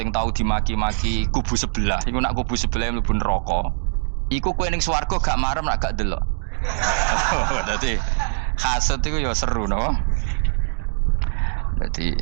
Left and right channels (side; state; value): left; silent; digital silence